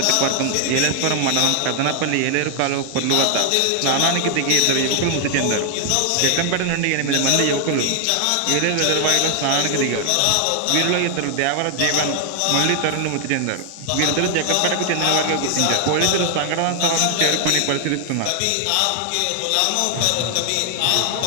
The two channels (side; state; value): both; different; correlation 0.00